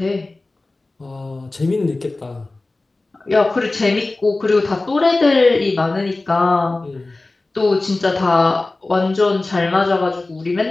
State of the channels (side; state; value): right; quieter; 3.2 dB